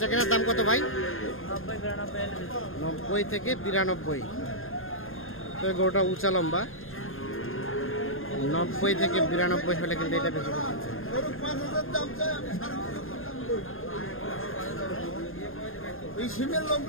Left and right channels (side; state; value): right; late; 0.60 ms